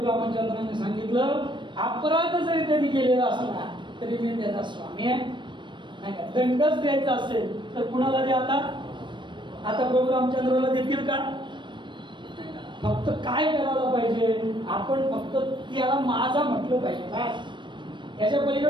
रामचंद्रांनी सांगितलं, अपराध जरी त्यांनी केलेला असला तरी मी त्याचा स्वामी आहे. नाही का? दंडच द्यायचा असेल तर कुणाला द्या? आता प्रभू रामचंद्राला देतील का? फक्त काय करायला पाहिजे, आपण फक्त त्याला माझा म्हटलं पाहिजे बस. याच्या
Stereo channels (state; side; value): late; left; 0.23 ms